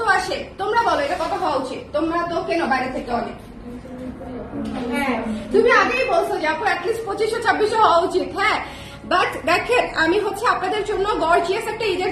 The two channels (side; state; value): both; identical; correlation 1.00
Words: আসে তোমরা বলো, এটা কত হওয়া উচিত? তোমরা তো কেন বাইরে থেকে অনেক, হ্যাঁ তুমি আগেই বলছো যে আপু অ্যাটলিস্ট 2500-2600 হওয়া উচিত। হ্যাঁ, বাট দেখেন আমি হচ্ছে আপনাদের জন্য গর্জিয়াস একটা ঈদের